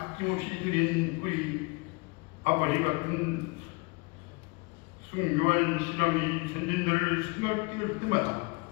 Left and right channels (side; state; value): right; quieter; 28.3 dB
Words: 드린 우리 아버지 같은 순교한 신앙이 전진들을 생각할 때마다